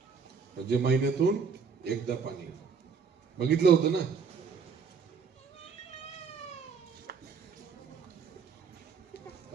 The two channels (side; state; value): left; quieter; 5.7 dB